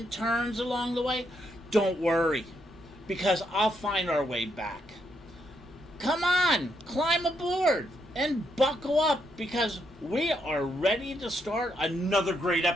turns along the way, don't worry, because I'll find our way back. Come on, climb aboard and buckle up because we are ready to start another great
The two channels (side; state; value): both; normal; correlation 0.78